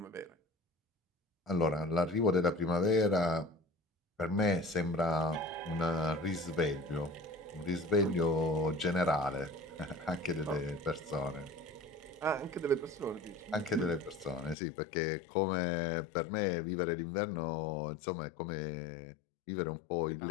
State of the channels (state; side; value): drops out; right; at 14.6 s